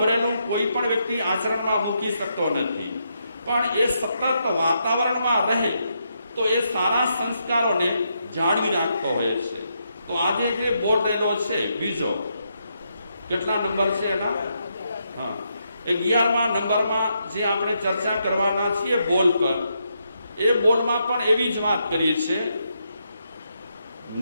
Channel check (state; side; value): inverted; both; correlation -0.79